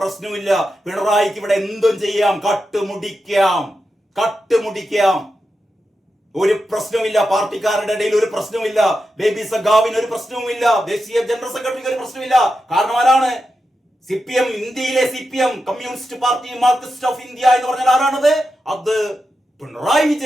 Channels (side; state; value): both; normal; correlation 0.89